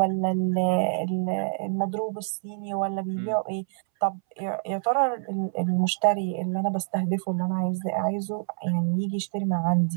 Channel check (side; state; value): left; silent; 61 dB below the other